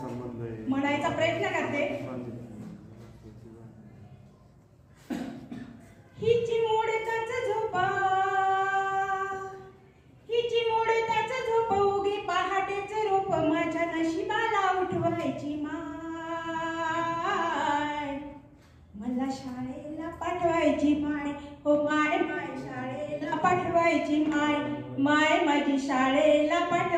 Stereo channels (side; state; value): both; identical; correlation 1.00